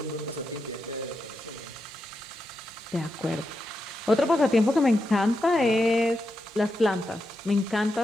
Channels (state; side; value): normal; both; correlation 0.86